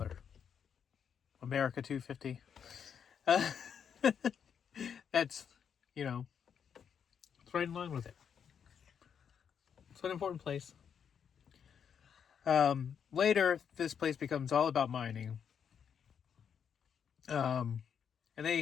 America 250. That's, it's right in line with it. It's an important place. Later, this place becomes all about mining. And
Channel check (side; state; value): right; quieter; 7.6 dB